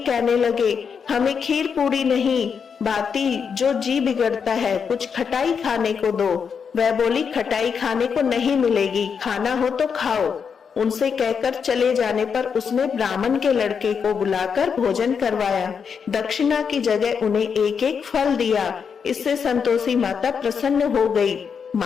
कहने लगे, हमें खीर पूरी नहीं, बाती जो जी बिगड़ता है, कुछ खटाई खाने को दो। वह बोली, खटाई खाने को नहीं मिलेगी, खाना हो तो खाओ। उनसे कहकर चले जाने पर उसने ब्राह्मण के लड़के को बुलाकर भोजन करवाया। दक्षिणा की जगह उन्हें एक एक फल दिया। इससे संतोषी माता प्रसन्न हो गई।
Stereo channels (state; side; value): quieter; right; 6.5 dB